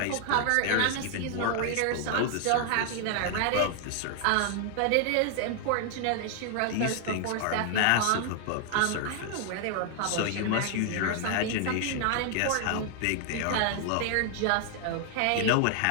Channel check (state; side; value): different; both; correlation 0.00